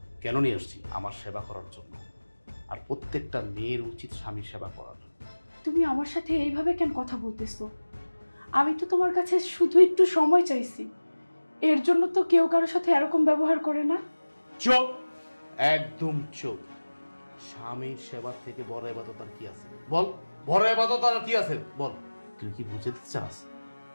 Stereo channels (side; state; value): both; inverted; correlation -1.00